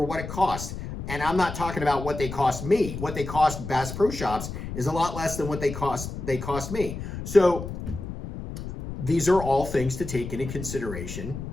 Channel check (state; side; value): noise; left; rumble, 8 dB below the sound